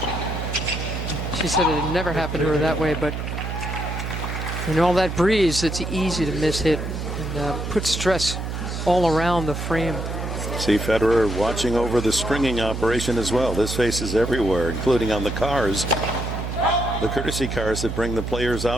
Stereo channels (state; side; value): noise; right; hum, 5 dB below the sound